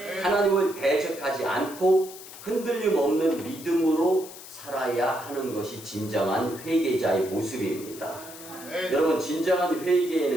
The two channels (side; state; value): left; noise; hiss, 15 dB below the sound